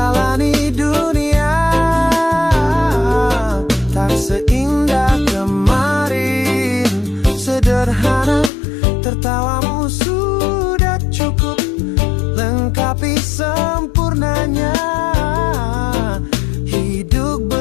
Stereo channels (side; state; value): right; drops out; at 8.5 s